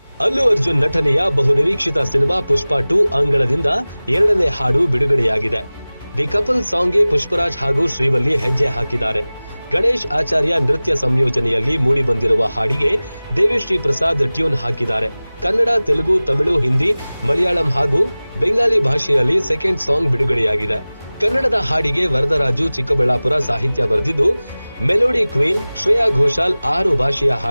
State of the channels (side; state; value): both; inverted; correlation -0.99